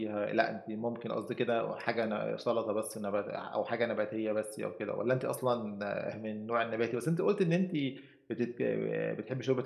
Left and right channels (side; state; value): both; identical; correlation 1.00